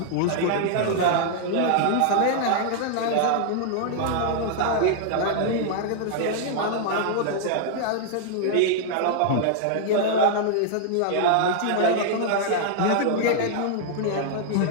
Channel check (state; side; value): different; both; correlation -0.01